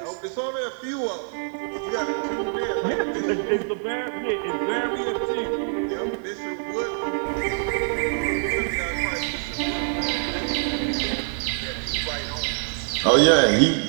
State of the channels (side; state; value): left; silent; digital silence